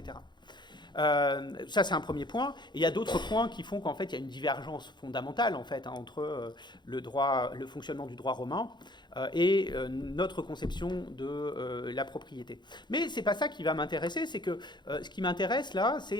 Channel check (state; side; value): late; right; 0.21 ms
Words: Ça, c'est un premier point. Et il y a d'autres points qui font qu'en fait, il y a une divergence fondamentale en fait, entre le fonctionnement du droit romain et notre conception de la propriété. Mais c'est pas ça qui va m'intéresser. C'est que ce qui m'intéresse là,